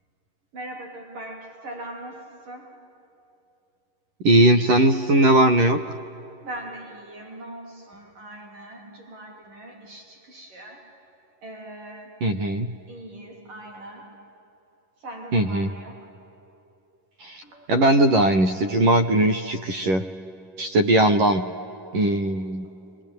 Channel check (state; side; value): late; left; 11 ms